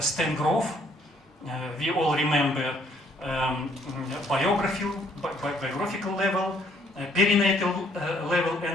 Grove, we all remember biographical level, perinatal level,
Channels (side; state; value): both; normal; correlation 0.65